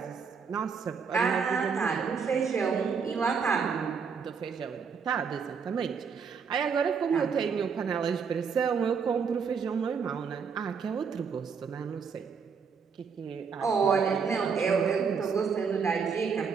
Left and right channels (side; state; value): left; quieter; 6.0 dB